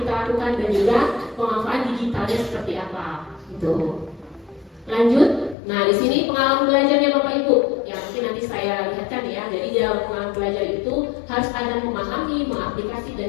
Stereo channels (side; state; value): right; drops out; at 5.6 s